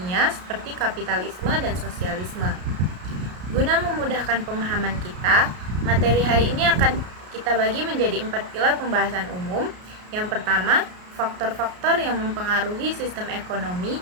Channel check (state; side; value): late; left; 33 ms